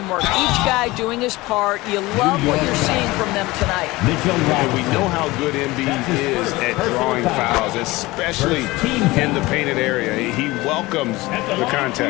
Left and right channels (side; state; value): right; quieter; 20.4 dB